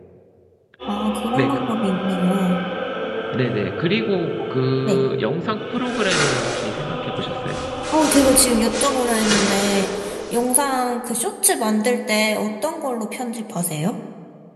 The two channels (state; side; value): identical; both; correlation 1.00